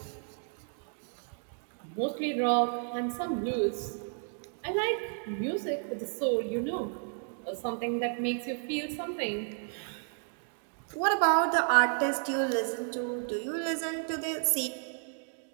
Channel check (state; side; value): silent; left; 56 dB below the other